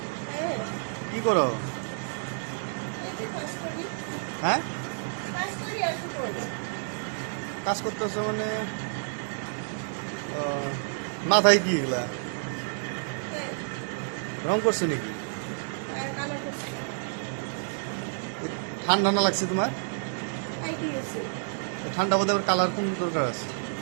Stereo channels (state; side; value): silent; left; 58 dB below the other